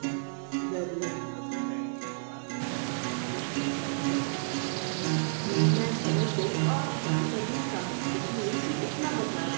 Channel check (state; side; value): silent; left; digital silence